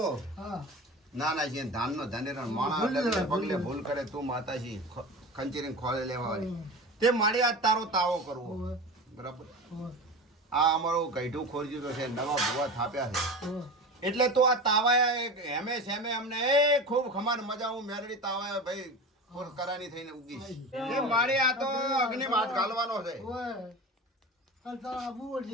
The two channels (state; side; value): normal; both; correlation 0.30